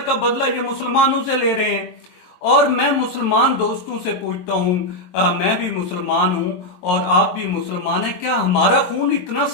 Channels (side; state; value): right; late; 22 ms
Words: का बदला ये मुसलमानों से ले रहे हैं। और मैं मुसलमान दोस्तों से पूछता हूं, मैं भी मुसलमान हूं और आप भी मुसलमान हैं, क्या हमारा खून इतना